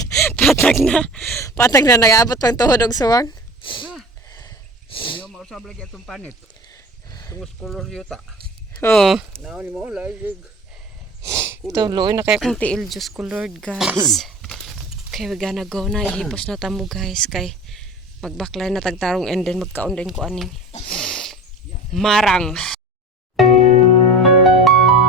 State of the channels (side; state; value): both; normal; correlation 0.36